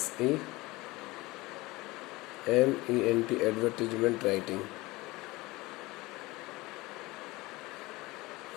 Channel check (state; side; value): quieter; right; 21.2 dB